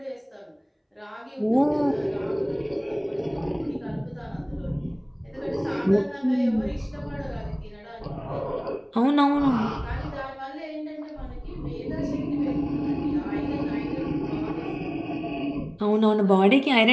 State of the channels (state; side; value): identical; both; correlation 1.00